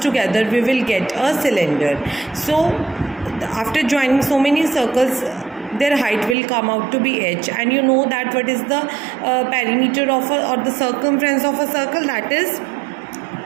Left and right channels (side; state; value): left; drops out; at 6.4 s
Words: we will get a cylinder. So after joining so many circles, their height will come out to be h, and you know that what is the perimeter of or the circumference of a circle, that is